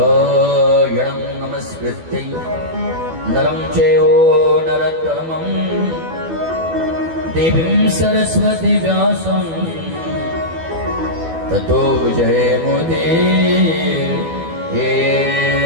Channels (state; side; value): late; left; 12 ms